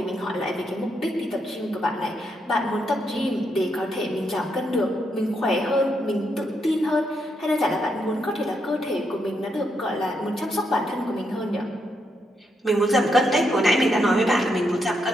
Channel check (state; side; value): normal; both; correlation 0.80